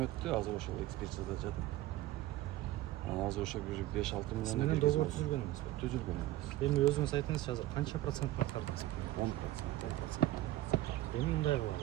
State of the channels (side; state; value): left; quieter; 16.0 dB